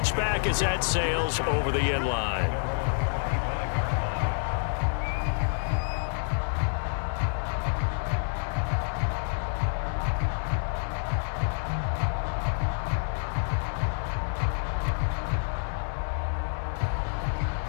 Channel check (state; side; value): silent; right; 59 dB below the other